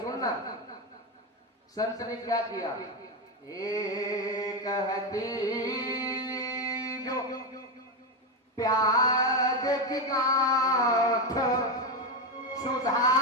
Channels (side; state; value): both; normal; correlation 0.10